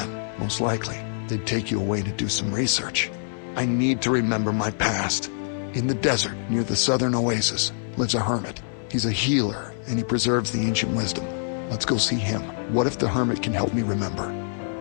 most likely, they'd take you away to do some research. I need to remember my past. In the desert, near the southern oasis, lives a hermit. He's a healer, and he preserves the ancient wisdom. Let's go see him. What if the hermit can help me remember?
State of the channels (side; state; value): right; silent; 62 dB below the other